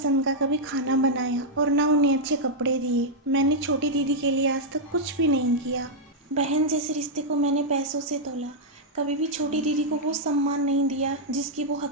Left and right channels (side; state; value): both; normal; correlation -0.04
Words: का कभी खाना बनाया और ना उन्हें अच्छे कपड़े दिए। मैंने छोटी दीदी के लिए आज तक कुछ भी नहीं किया। बहन जैसे रिश्ते को मैंने पैसों से तोला। कभी भी छोटी दीदी को वो सम्मान नहीं दिया जिसकी वो